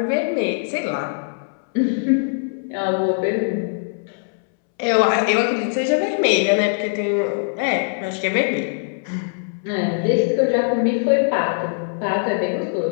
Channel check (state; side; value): silent; right; 64 dB below the other